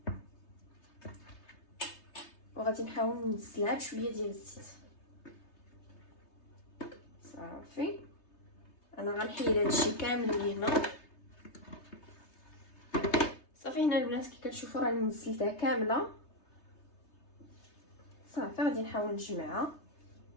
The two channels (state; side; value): late; right; 3.3 ms